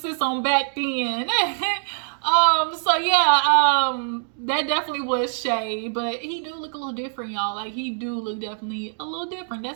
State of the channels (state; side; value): silent; left; 63 dB below the other